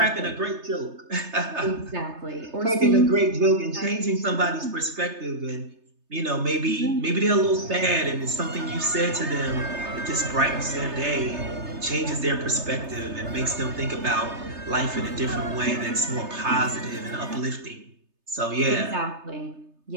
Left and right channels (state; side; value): late; left; 3.3 ms